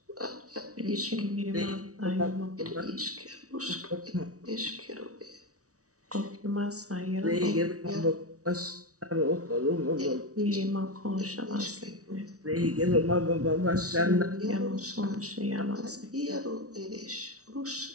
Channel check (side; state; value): left; late; 0.66 ms